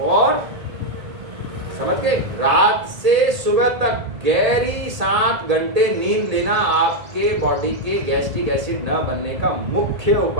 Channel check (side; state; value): left; late; 1.7 ms